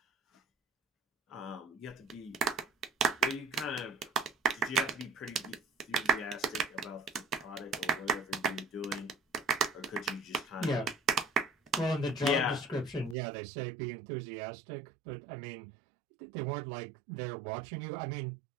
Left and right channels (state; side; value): drops out; left; at 13.2 s